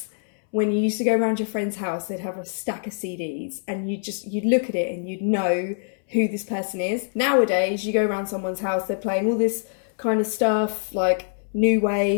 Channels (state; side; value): silent; right; 62 dB below the other